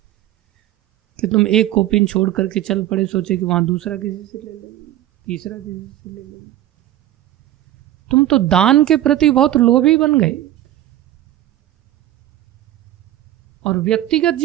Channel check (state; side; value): quieter; left; 13.4 dB